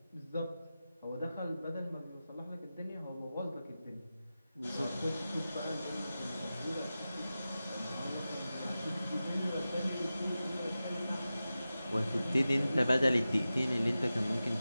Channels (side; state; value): both; inverted; correlation -0.94